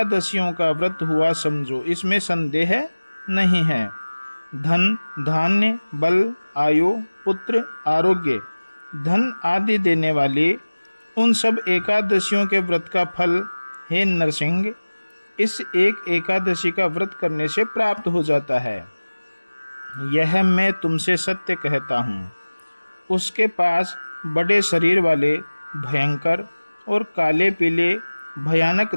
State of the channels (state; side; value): inverted; both; correlation -1.00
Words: का व्रत हुआ समझो, इसमें संदेह नहीं है। धन, धान्य, बल, आयु, पुत्र, आरोग्य, धन आदि देने वाली उन सब एकादशियों के व्रत का फल, हे नरसिंह, इस एक एकादशी का व्रत करने से प्राप्त हो जाता है। यह मैं तुमसे सत्य कहता हूँ। उसके पास बड़े शरीर वाले, भयंकर और काले पीले भयानक